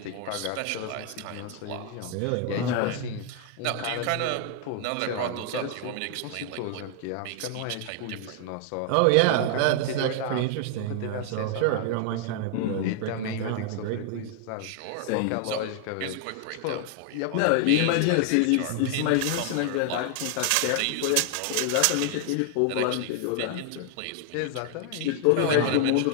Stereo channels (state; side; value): different; both; correlation 0.00